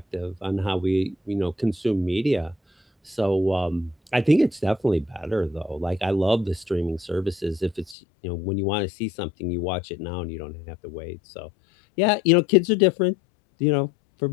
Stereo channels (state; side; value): drops out; right; at 8.0 s